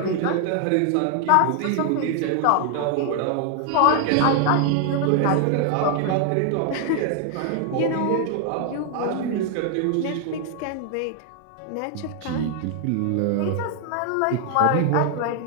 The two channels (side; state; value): both; different; correlation 0.00